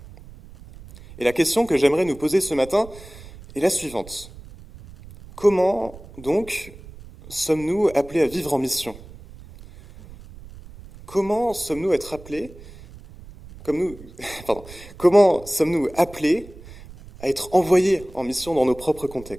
Et la question que j'aimerais nous poser ce matin est la suivante. Comment, donc, sommes-nous appelés à vivre en mission ? Comment sommes-nous être appelés, comment sommes-nous appelés à être envoyés en mission dans nos propres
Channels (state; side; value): noise; right; rumble, 18 dB below the sound